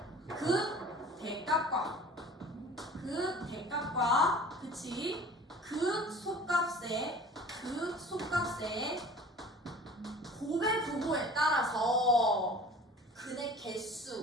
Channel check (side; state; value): both; normal; correlation 0.44